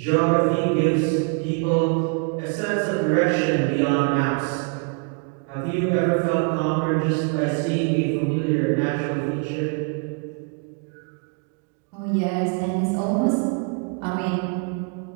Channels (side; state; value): left; quieter; 35.9 dB